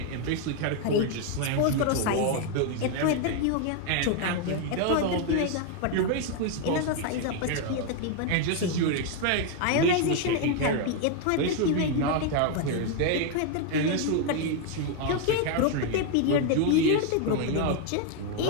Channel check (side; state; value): both; different; correlation 0.01